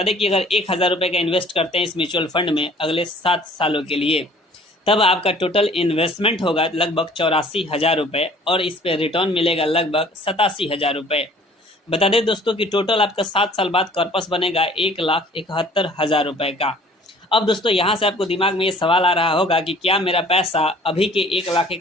दें कि अगर 1000 रुपये का इन्वेस्ट करते हैं इस म्यूचुअल फंड में अगले 7 सालों के लिए, तब आपका टोटल इन्वेस्टमेंट होगा लगभग 84,000 रुपये और इस पर रिटर्न मिलेगा लगभग 87,000 रुपये। बता दें दोस्तों कि टोटल आपका 7 साल बाद कॉर्पस बनेगा 1,71,000 रुपये का। अब दोस्तों यहाँ से आपको दिमाग में ये सवाल आ रहा होगा कि क्या मेरा पैसा अभी के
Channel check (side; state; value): both; normal; correlation 0.52